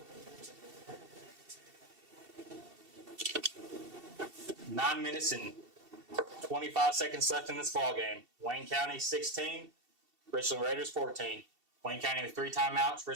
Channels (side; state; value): left; late; 2.7 ms